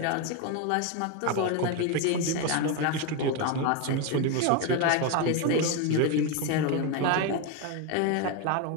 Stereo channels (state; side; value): different; both; correlation 0.02